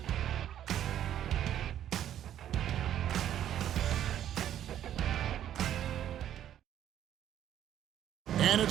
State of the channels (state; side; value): quieter; left; 10.9 dB